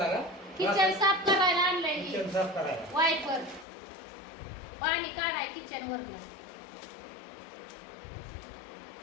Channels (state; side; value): drops out; right; at 3.7 s